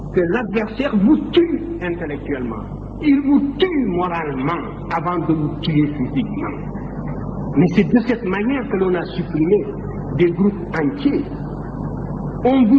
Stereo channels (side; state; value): both; identical; correlation 1.00